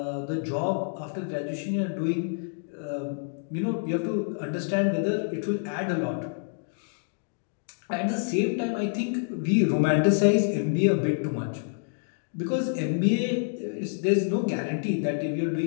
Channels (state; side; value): silent; right; digital silence